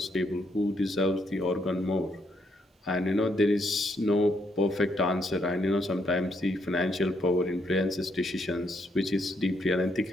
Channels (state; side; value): normal; both; correlation 0.75